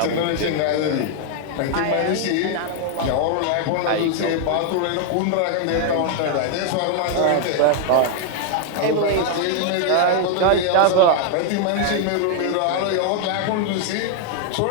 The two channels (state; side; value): different; both; correlation 0.00